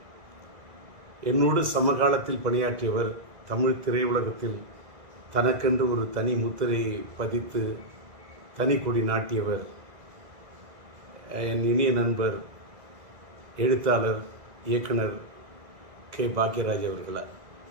என்னோடு சமகாலத்தில் பணியாற்றியவர், தமிழ் திரையுலகத்தில் தனக்கென்று ஒரு தனி முத்திரை பதித்து தனி கொடி நாட்டியவர், என் இனிய நண்பர் எழுத்தாளர் இயக்குனர் கே. பாக்யராஜ் அவர்களார்.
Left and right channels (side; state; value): left; late; 2.0 ms